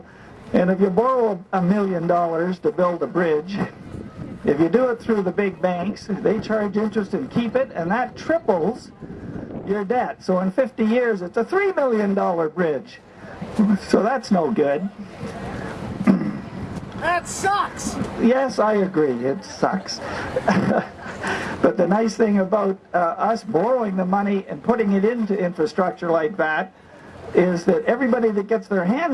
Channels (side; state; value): both; identical; correlation 1.00